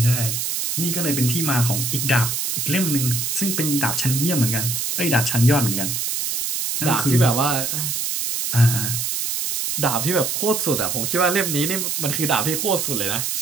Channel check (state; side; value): noise; right; hiss, 1 dB below the sound